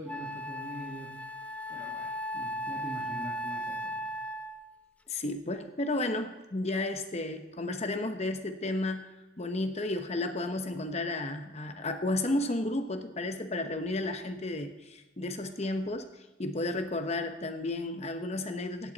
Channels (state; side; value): normal; both; correlation 0.47